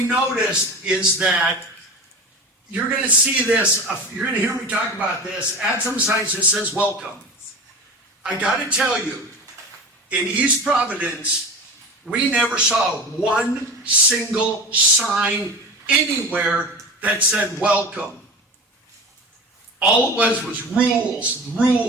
noticed is that you're going to see this, you're going to hear me talk about this, at some signs that says welcome. I got to tell you, in East Providence, we never saw one single sign anywhere that said welcome. All it was rules,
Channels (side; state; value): both; normal; correlation 0.31